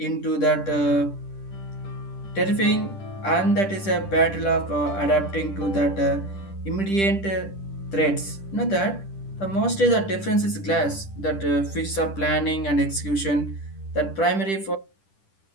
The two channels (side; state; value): right; late; 10 ms